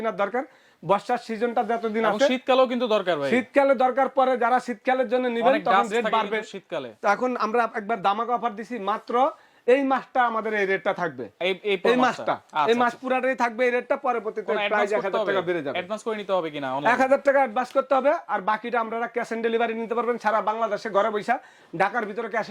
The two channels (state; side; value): identical; both; correlation 1.00